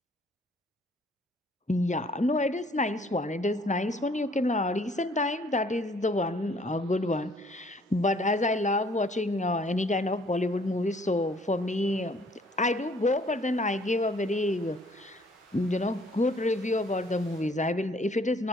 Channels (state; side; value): normal; both; correlation 0.60